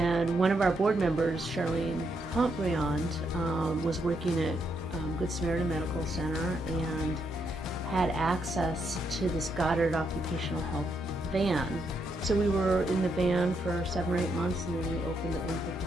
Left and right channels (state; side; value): normal; both; correlation 0.78